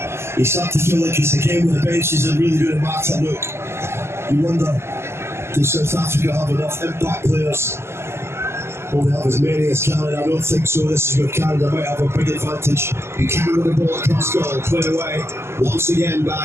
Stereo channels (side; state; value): left; late; 0.12 ms